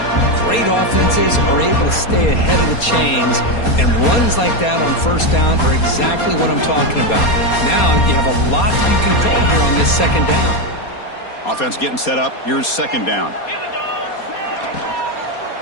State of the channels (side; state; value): right; late; 4.2 ms